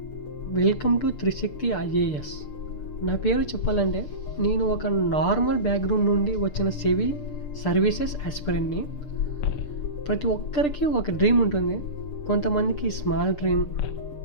Welcome to Trishakti IAS. నా పేరు చెప్పాలంటే నేను ఒక నార్మల్ బ్యాక్గ్రౌండ్ నుండి వచ్చిన సివిల్ సర్వీసెస్ ఆస్పిరెంట్ని. ప్రతి ఒక్కరికి ఒక డ్రీమ్ ఉంటుంది. కొంతమందికి స్మాల్ డ్రీమ్,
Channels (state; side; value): late; right; 6.7 ms